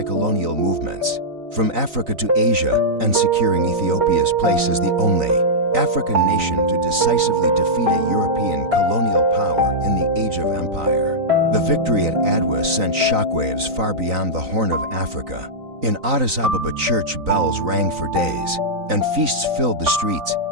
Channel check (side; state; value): left; late; 3.9 ms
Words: movements from Africa to Asia and securing Ethiopia's place as the only African nation to decisively defeat a European colonial power in the Age of Empire. The victory at Adwa sent shockwaves far beyond the Horn of Africa. In Addis Ababa, church bells rang for days, and feasts filled the streets